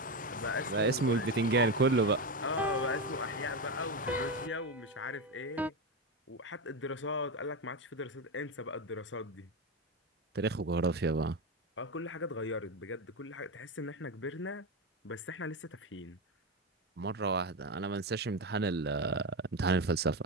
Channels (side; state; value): both; normal; correlation 0.14